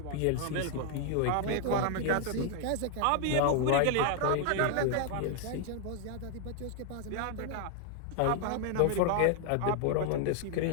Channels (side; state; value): both; different; correlation 0.00